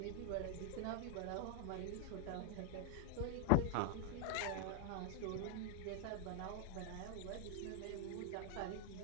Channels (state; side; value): different; both; correlation 0.00